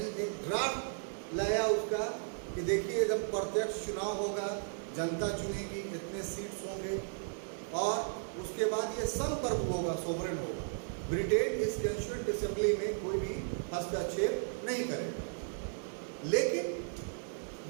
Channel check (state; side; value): silent; left; digital silence